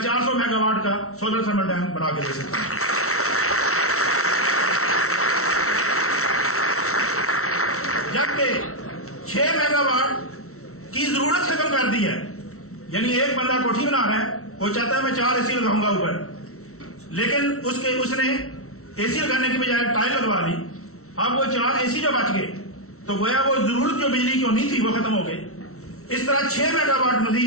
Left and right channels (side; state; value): right; late; 0.63 ms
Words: 400 मेगावाट का सोलर थर्मल डैम बना के दे सकता हूं। जबकि 6 मेगावाट की जरूरत खत्म कर दी है। यानी एक बंदा कोठी बना रहा है, वो चाहता है मैं 4 एसी लगाऊंगा ऊपर, लेकिन उसने एसी लगाने की बजाय टाइल लगवा ली। अब वो 4 एसी जो बच गए तो गोया वो जरूरत जो बिजली की होनी थी वो खत्म हो गई। इस तरह 6 मेगावाट